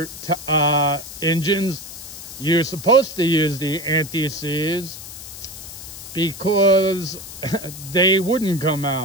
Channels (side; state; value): left; noise; hiss, 13 dB below the sound